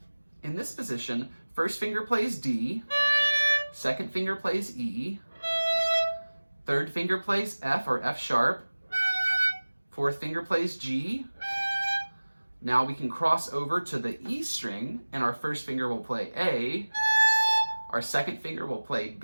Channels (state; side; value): inverted; both; correlation -1.00